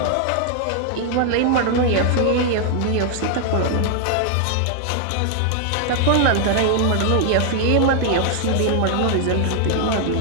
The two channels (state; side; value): different; both; correlation 0.00